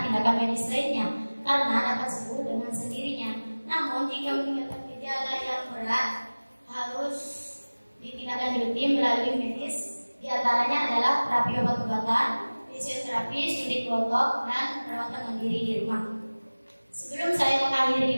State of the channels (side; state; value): both; inverted; correlation -1.00